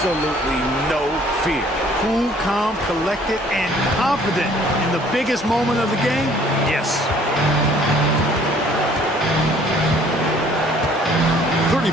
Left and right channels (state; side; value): normal; both; correlation 0.57